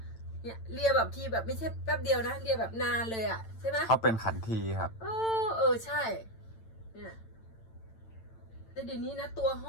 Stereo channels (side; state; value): right; late; 8.9 ms